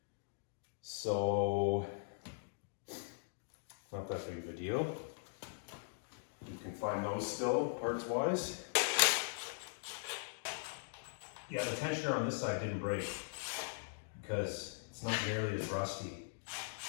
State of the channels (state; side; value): silent; right; digital silence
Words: So, not that big of a deal. You can find those still, parts wise. Yeah, the tensioner on this side didn't break because it's not nearly as rusty.